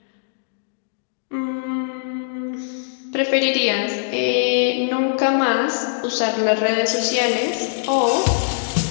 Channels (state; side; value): silent; right; digital silence